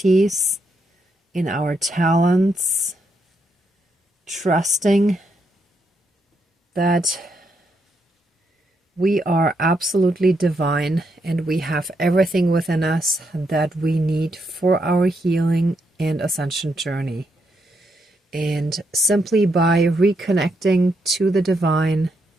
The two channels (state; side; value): normal; both; correlation 0.79